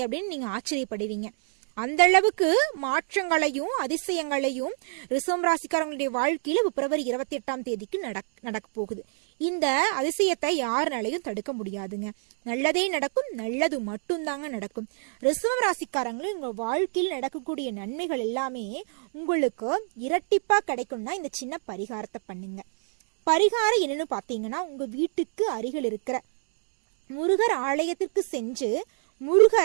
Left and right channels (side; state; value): left; silent; 60 dB below the other